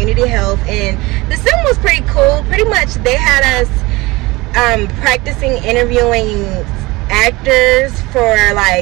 health, and the sim was pretty cool. Pretty much they had us practicing interviewing actors for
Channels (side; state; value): left; quieter; 22.0 dB